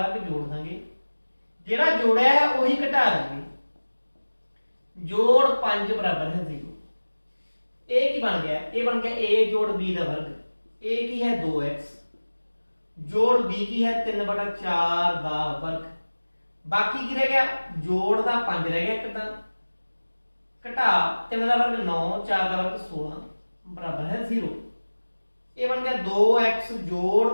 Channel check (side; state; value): both; inverted; correlation -1.00